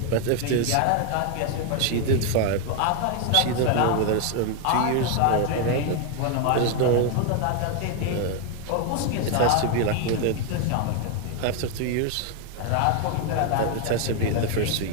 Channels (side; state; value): both; different; correlation 0.00